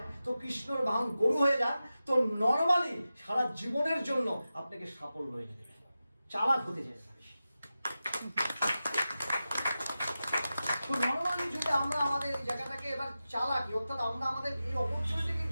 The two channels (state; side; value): inverted; both; correlation -0.93